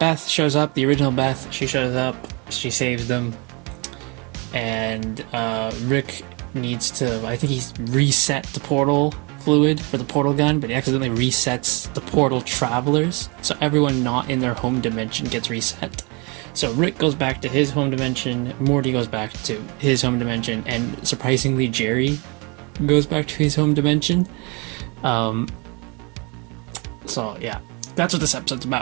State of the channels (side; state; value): left; quieter; 30.2 dB